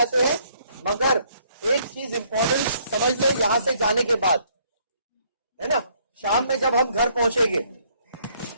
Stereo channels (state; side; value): inverted; both; correlation -0.66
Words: हैं, मगर एक चीज इंपॉर्टेंट समझ लें यहां से जाने के बाद, है ना, शाम में जब हम घर पहुंचेंगे,